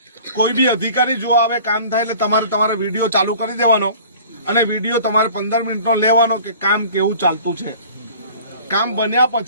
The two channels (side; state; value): both; inverted; correlation -0.46